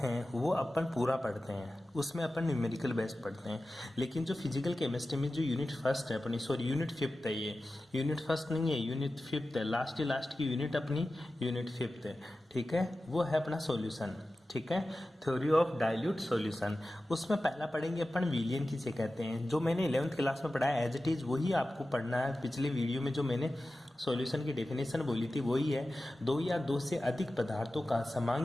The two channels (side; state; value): both; normal; correlation 0.95